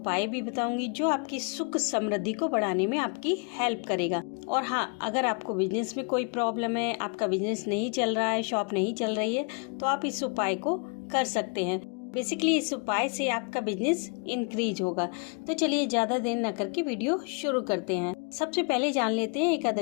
भी बताऊंगी जो आपकी सुख समृद्धि को बढ़ाने में आपकी हेल्प करेगा। और हाँ, अगर आपको बिजनेस में कोई प्रॉब्लम है, आपका बिजनेस नहीं चल रहा है, शॉप नहीं चल रही है, तो आप इस उपाय को कर सकते हैं। बेसिकली इस उपाय से आपका बिजनेस इंक्रीज होगा। तो चलिए ज्यादा देर न करके वीडियो शुरू करते हैं। सबसे पहले जान लेते हैं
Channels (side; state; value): right; quieter; 36.8 dB